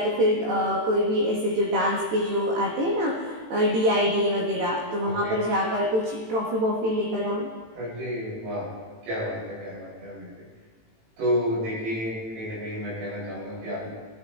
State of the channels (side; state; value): left; late; 18 ms